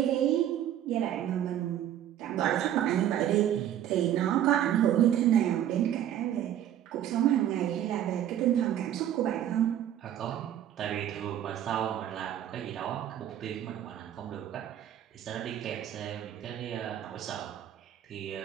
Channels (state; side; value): quieter; left; 11.1 dB